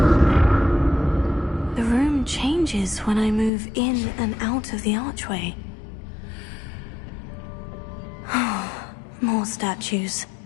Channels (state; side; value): drops out; right; at 3.5 s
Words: Changes when I move in and out of the archway. More statues.